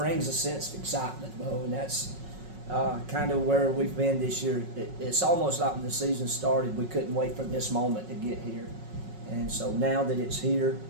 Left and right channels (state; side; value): late; left; 5.4 ms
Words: a sense of excitement, Bo, and that's kind of where we've been this year. It's almost like when the season started, we couldn't wait for this moment to get here. And so now that it's here,